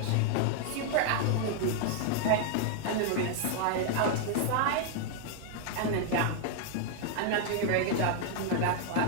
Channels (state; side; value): different; both; correlation 0.00